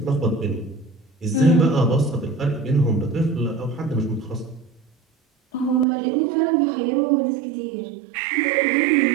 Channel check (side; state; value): left; drops out; at 5.9 s